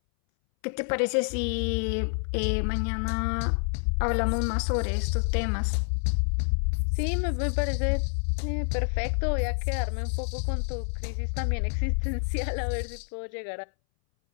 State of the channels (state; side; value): silent; right; 60 dB below the other